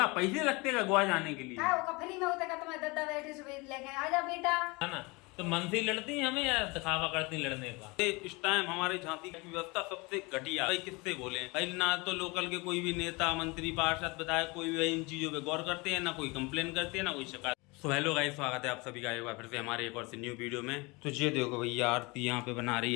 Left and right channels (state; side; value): quieter; right; 26.0 dB